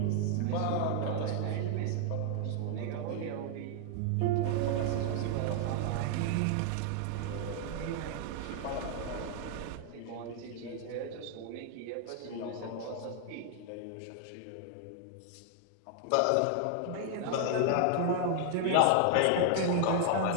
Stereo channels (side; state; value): both; different; correlation 0.00